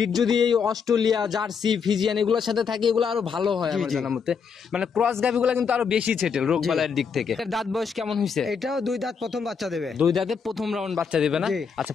যদি এই অস্ট্রেলিয়া, জার্সি, ফিজিয়ান এগুলোর সাথে থাকে, এগুলো আরো ভালো হয় আমার জি। জানার মতে। মানে ক্রস গাভিগুলো কিন্তু আরো বেশি ছেটেল রোগ বালাইয়ের দিক থেকে। এর দাঁত বয়স কেমন হয়েছে? এটাও 2 দাঁত প্রথম বাচ্চা দেবে। 2 দাঁতে প্রথম রাউন্ড বাচ্চা দেবে না? জি। আচ্ছা,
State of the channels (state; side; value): quieter; right; 6.1 dB